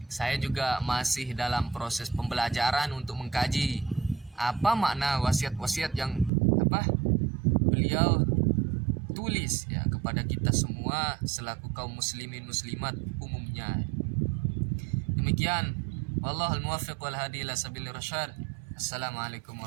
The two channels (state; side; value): drops out; left; at 6.3 s